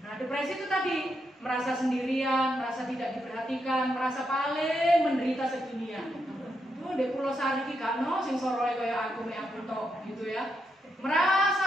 Nah, depresi itu tadi merasa sendirian, merasa tidak diperhatikan, merasa paling menderita sedunia. Di Pulau Sari ki gak ono sing soroe kaya aku tok gitu ya. Merasa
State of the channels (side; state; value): both; normal; correlation 0.82